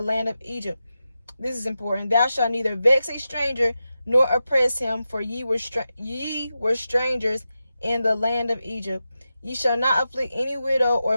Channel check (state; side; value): inverted; both; correlation -0.91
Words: land of Egypt. This is important. Thou shalt neither vex a stranger nor oppress him, for ye were strangers in the land of Egypt. Ye shall not afflict any widow